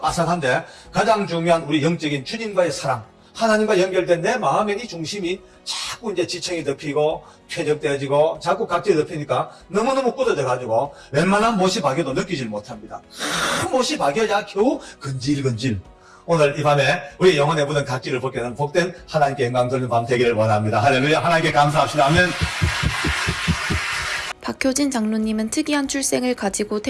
빠삭한데 가장 중요한 우리 영적인 주님과의 사랑, 하나님과 연결된 내 마음의 이 중심이 자꾸 이제 지청이 덮이고 쾌적되어지고 자꾸 각질이 덮이니까 너무너무 굳어져 가지고 웬만한 못이 박여도 느끼질 못합니다. 큰 못이 박여야 겨우 근질근질. 오늘 이 밤에 우리 영혼에 묻은 각질을 벗게 하는 복된 하나님께 영광 돌리는 밤 되기를 원합니다. 할렐루야. 하나님께 감사합시다. 아멘. 박효진 장로님은 특이한 출생을 가지고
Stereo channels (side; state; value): both; identical; correlation 1.00